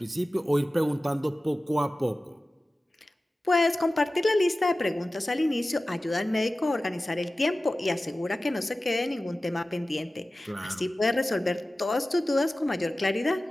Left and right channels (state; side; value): normal; both; correlation 0.96